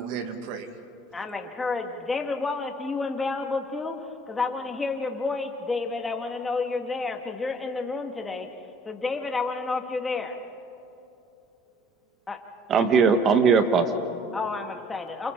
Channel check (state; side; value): normal; both; correlation 0.56